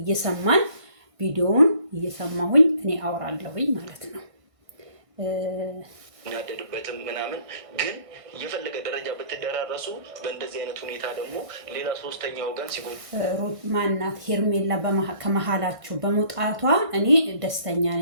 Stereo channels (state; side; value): late; left; 1.6 ms